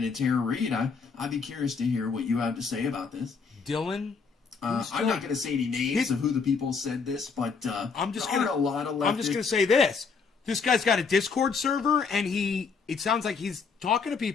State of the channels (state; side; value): quieter; right; 5.3 dB